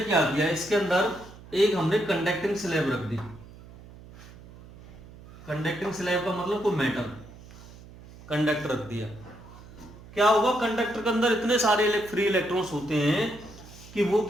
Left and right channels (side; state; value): right; noise; hum, 19 dB below the sound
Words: क्या किया, इसके अंदर एक हमने कंडक्टिंग स्लैब रख दी, कंडक्टिंग स्लैब का मतलब कोई मेटल कंडक्टर रख दिया। क्या होगा, कंडक्टर के अंदर इतने सारे फ्री इलेक्ट्रॉन्स होते हैं कि वो